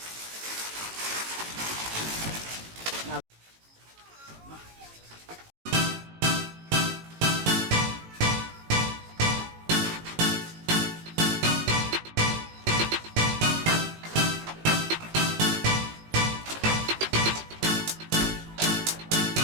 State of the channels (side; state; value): left; late; 18 ms